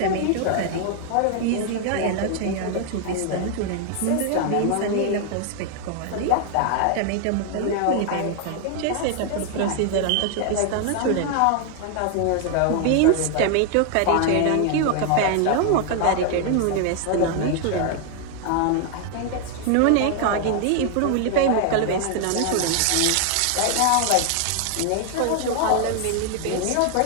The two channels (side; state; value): both; different; correlation 0.00